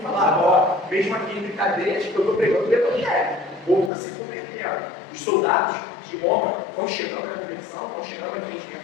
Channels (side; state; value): right; drops out; at 3.9 s